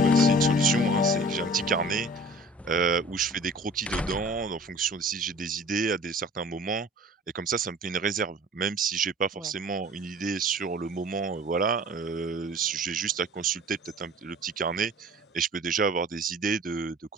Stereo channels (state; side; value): normal; both; correlation 0.46